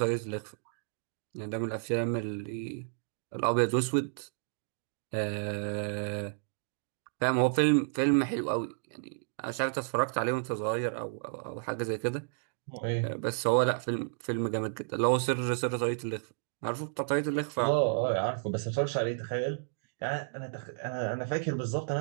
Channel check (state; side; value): silent; left; digital silence